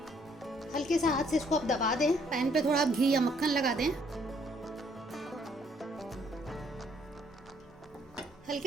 हल्के से हाथ से इसको आप दबा दें। पैन पे थोड़ा घी या मक्खन लगा दें, हल्के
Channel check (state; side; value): normal; both; correlation 0.66